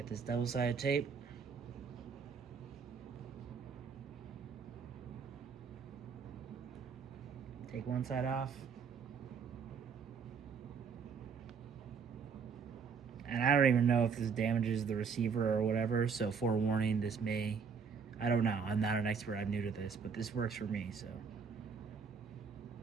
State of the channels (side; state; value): left; quieter; 6.0 dB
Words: this double-sided tape. Take one side off. And I don't even know if this damages the receiver or whatever, so forewarning, this may, I don't know, I'm not an expert, I'm new to this, but this works for me, so.